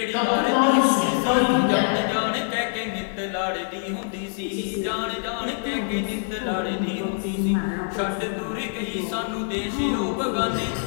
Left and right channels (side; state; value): right; silent; 58 dB below the other